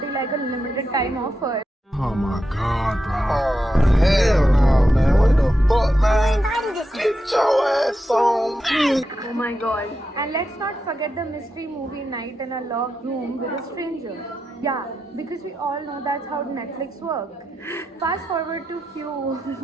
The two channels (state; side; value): normal; both; correlation 0.87